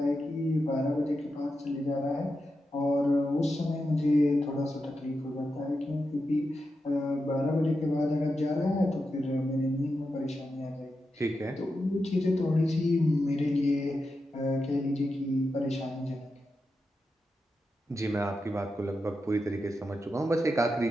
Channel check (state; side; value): normal; both; correlation 0.88